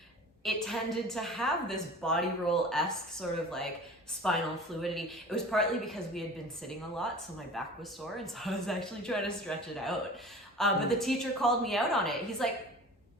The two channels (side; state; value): both; normal; correlation 0.40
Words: it tended to have this body roll-esque sort of like spinal fluidity. It was partly because we had been sitting a lot, so my back was sore, and so I was actually trying to stretch it out. But the teacher called me out on it. He's like,